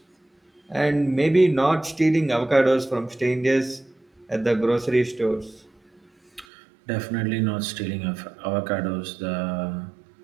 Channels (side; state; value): left; drops out; at 6.5 s